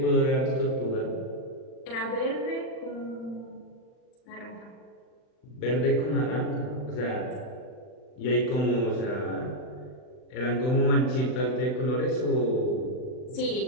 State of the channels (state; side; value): late; right; 39 ms